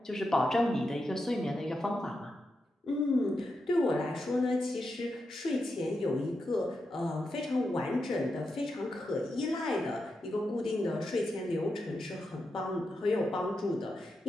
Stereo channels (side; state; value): both; normal; correlation 0.87